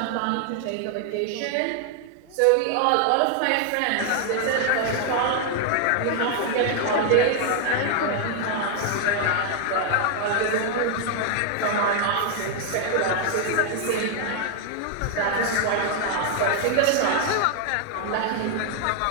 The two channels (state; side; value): different; both; correlation 0.00